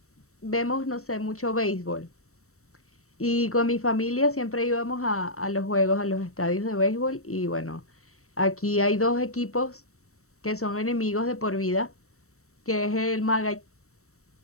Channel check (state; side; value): late; right; 0.64 ms